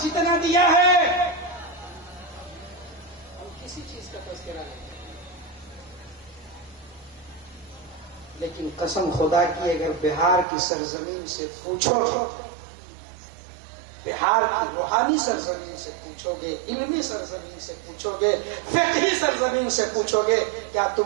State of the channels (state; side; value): drops out; left; at 10.5 s